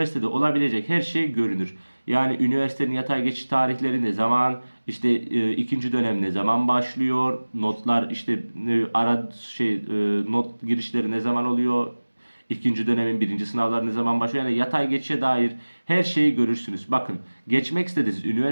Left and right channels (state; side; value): inverted; both; correlation -1.00